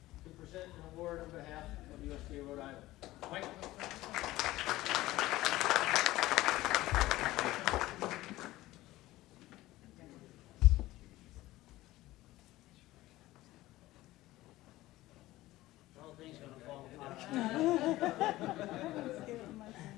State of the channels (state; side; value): quieter; right; 17.1 dB